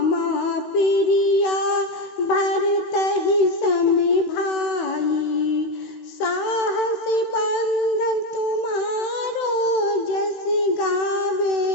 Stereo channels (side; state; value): right; late; 16 ms